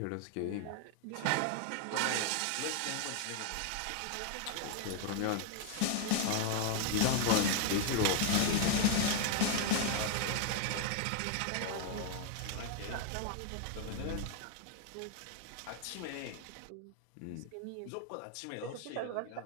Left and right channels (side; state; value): both; different; correlation 0.00